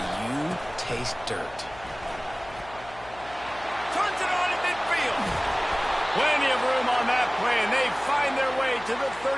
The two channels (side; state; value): left; noise; hum, 20 dB below the sound